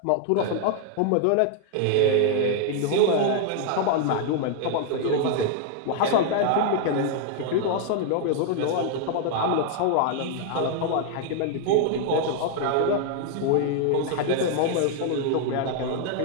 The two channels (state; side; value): different; both; correlation 0.00